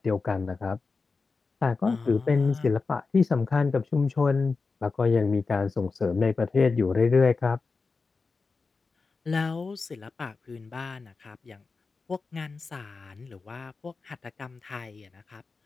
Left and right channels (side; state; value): right; quieter; 4.3 dB